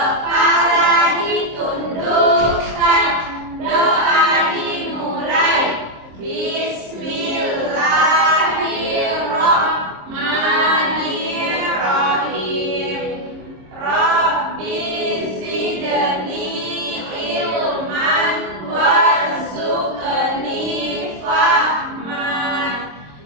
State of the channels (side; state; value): left; late; 26 ms